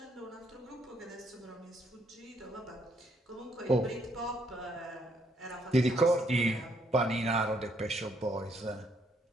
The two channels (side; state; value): both; normal; correlation 0.71